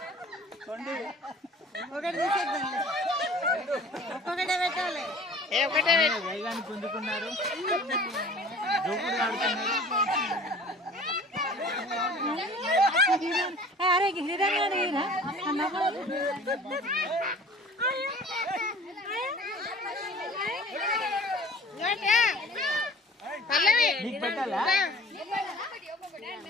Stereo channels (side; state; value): both; normal; correlation 0.46